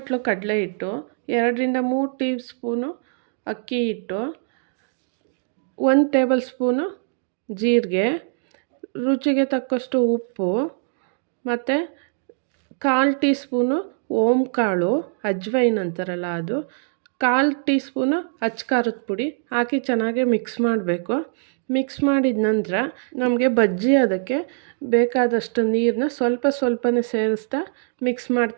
ಕಡಲೆ ಹಿಟ್ಟು, 2ರಿಂದ 3 ಟೀ ಸ್ಪೂನು ಅಕ್ಕಿ ಹಿಟ್ಟು, 1 ಟೇಬಲ್ ಸ್ಪೂನು ಜೀರಿಗೆ, ರುಚಿಗೆ ತಕ್ಕಷ್ಟು ಉಪ್ಪು, ಮತ್ತು 1/4 ಟೀ ಸ್ಪೂನು ಓಂಕಾಳು, ಅಜ್ವೈನ್ ಅಂತಾರಲ್ಲ ಅದು, 1/4 ಟೀ ಸ್ಪೂನು ಅಚ್ಕಾರದ ಪುಡಿ ಹಾಕಿ ಚೆನ್ನಾಗಿ ಮಿಕ್ಸ್ ಮಾಡಬೇಕು. ಮಿಕ್ಸ್ ಮಾಡಿದ ನಂತರ ನಮಗೆ ಬಜ್ಜಿ ಅದಕ್ಕೆ ಬೇಕಾದಷ್ಟು ನೀರನ್ನ ಸ್ವಲ್ಪನೇ ಸೇರಿಸ್ತಾ ಮಿಕ್ಸ್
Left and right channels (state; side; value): silent; left; 61 dB below the other